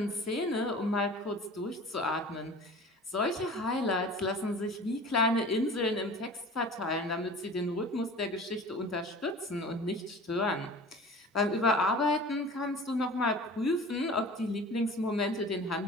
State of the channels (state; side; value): normal; both; correlation 0.40